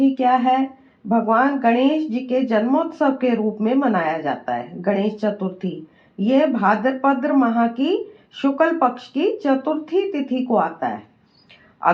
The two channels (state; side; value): identical; both; correlation 1.00